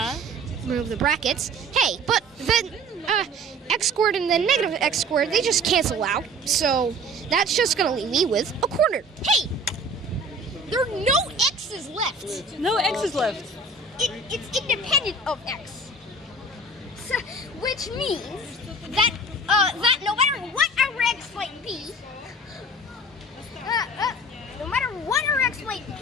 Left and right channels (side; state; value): both; normal; correlation 0.44